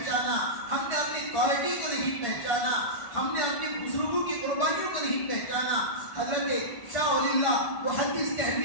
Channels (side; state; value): right; late; 1.5 ms